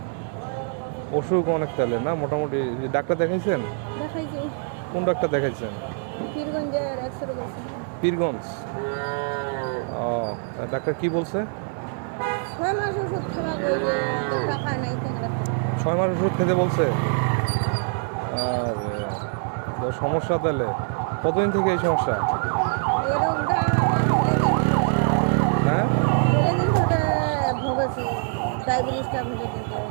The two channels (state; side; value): silent; left; 58 dB below the other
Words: অসুখ অনেক তাহলে না মোটামুটি ডাক্তার দেখাইছেন? দেখাইছি কোন ডাক্তার দেখাইছেন? পীরগঞ্জের এক্সরে কইছিল। পীরগঞ্জ। ও ডাক্তার কি বলছে? 6 মাস ওষুধ খাওয়া কইছে টাকা নাই কেন 6 মাস ওষুধ খেতে বলছে। আর তো সমস্যা তাহলে কতদিন থেকে এই সমস্যা? এই রোগটা হ্যাঁ দিন ধরে ভোগেছি ডায়াবেটিসটা ভুলে কিন্তু